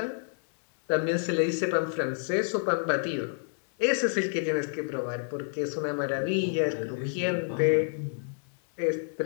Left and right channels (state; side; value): silent; right; 59 dB below the other